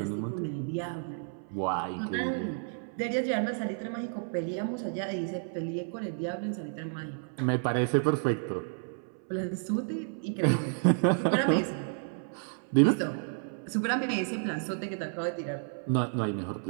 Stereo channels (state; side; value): silent; left; 57 dB below the other